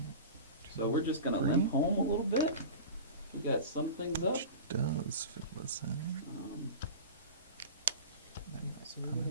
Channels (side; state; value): both; inverted; correlation -0.33